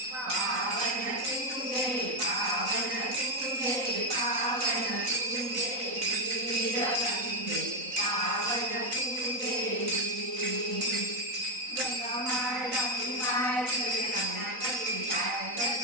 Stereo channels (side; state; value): left; late; 3.9 ms